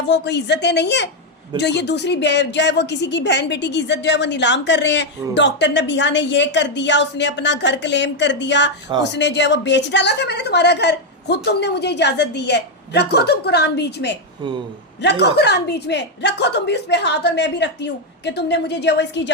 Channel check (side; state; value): both; normal; correlation 0.02